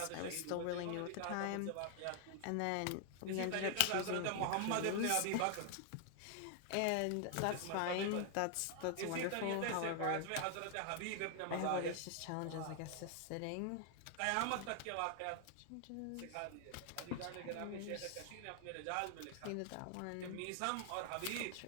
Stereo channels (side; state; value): both; different; correlation 0.00